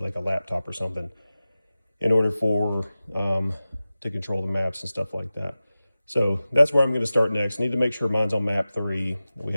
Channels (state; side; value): inverted; both; correlation -0.95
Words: a laptop or something in order for to control the maps and stuff like that. So that's where I'm going to start next. I need to make sure mine's on map 3. We